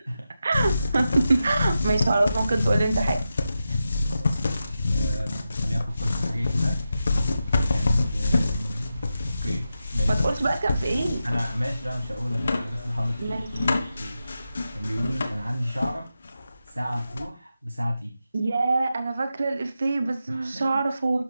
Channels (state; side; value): inverted; both; correlation -0.90